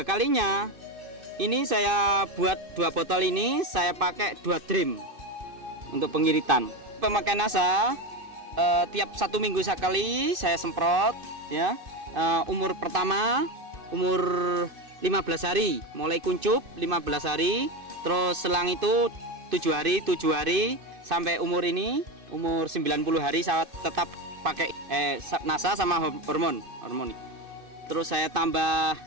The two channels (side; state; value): left; late; 2.6 ms